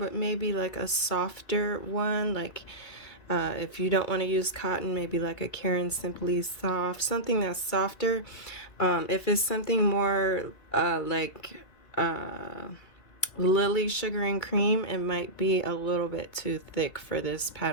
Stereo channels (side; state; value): right; late; 2.3 ms